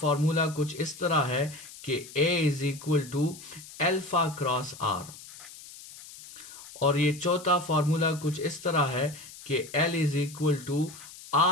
कुछ इस तरह है कि a is equal to alpha cross r, और ये चौथा फार्मूला कुछ इस तरह है कि l is equal to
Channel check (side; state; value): left; noise; hiss, 17 dB below the sound